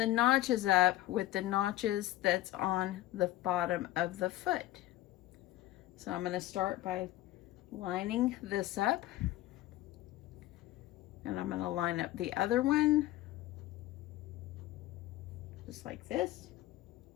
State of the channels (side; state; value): right; quieter; 15.7 dB